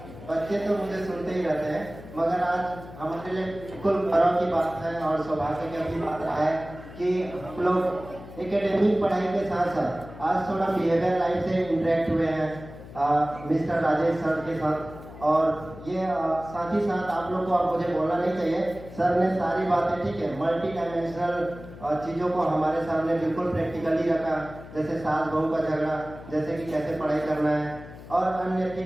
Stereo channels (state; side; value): noise; left; hum, 16 dB below the sound